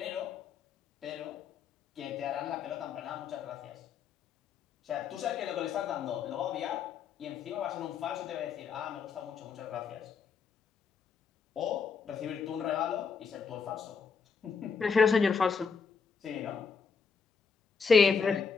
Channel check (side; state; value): right; quieter; 5.7 dB